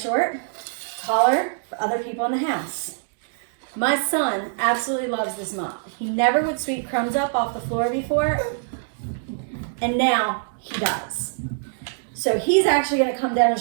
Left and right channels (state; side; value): silent; left; digital silence